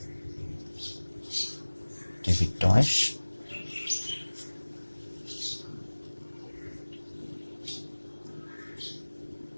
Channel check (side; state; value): both; inverted; correlation -1.00